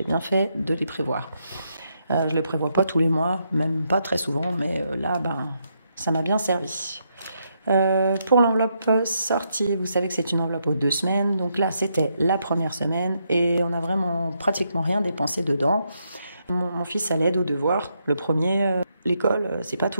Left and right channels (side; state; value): both; inverted; correlation -0.79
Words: bien fait de les prévoir. Je les prévois pas tous les mois, même pas très souvent, mais là, ça m'a bien servi. Pour l'enveloppe sortie, vous savez que c'est une enveloppe aux 2 semaines. Donc là, c'était la première semaine et on a vraiment pratiquement rien dépensé dedans. Mon fils a l'aide aux devoirs. Le premier, l'école, c'est pas